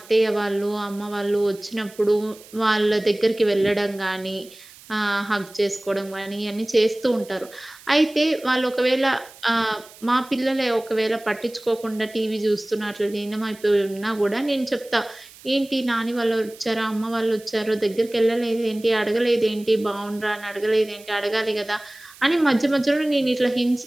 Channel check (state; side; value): noise; right; hiss, 22 dB below the sound